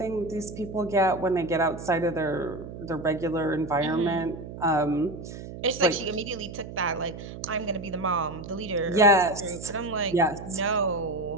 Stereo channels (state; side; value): noise; right; hum, 11 dB below the sound